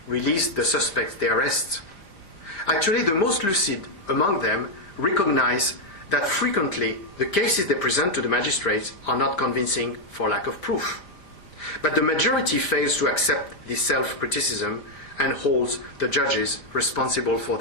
released the suspects they arrest. Actually, the most lucid among them recognize that frequently the cases they present to the magistrates are not convincing for lack of proof. But the majority fails to accept this self-criticism and holds the judges responsible for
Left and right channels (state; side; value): late; right; 5.1 ms